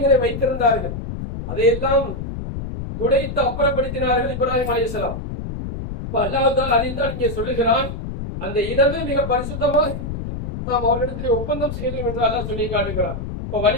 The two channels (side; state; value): left; noise; rumble, 6 dB below the sound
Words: வைத்திருந்தார்கள். அதையெல்லாம் துடைத்து அப்புறப்படுத்தினார்கள் இப்ராஹிம் அலைஹிஸ்ஸலாம். அல்லாஹ் தஆலா அதைத்தான் இங்கே சொல்லுகிறான், அந்த இடமே மிக பரிசுத்தமாக நாம் அவர்களிடத்தில் ஒப்பந்தம் செய்தோம் என்று அல்லாஹ் சொல்லி காட்டுகிறான். இப்ப